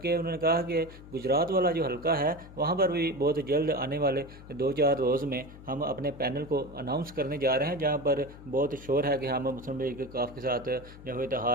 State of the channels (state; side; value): noise; left; hum, 17 dB below the sound